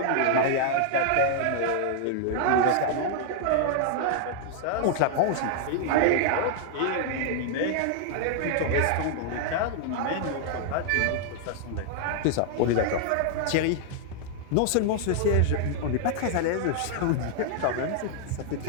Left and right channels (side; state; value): both; different; correlation -0.01